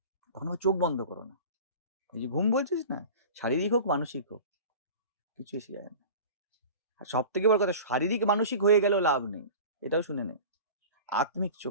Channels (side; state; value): both; inverted; correlation -0.37